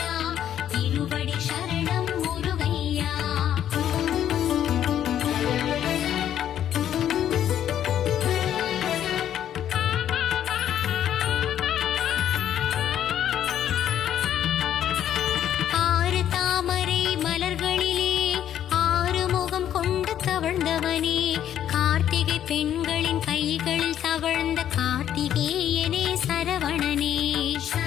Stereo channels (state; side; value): quieter; right; 10.5 dB